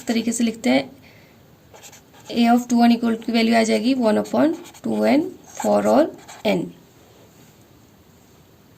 तरीके से लिखते हैं ए ऑफ 2n इक्वल की वैल्यू आ जाएगी 1/2n for all n।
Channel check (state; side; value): identical; both; correlation 1.00